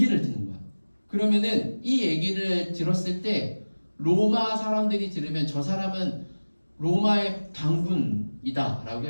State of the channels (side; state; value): both; inverted; correlation -1.00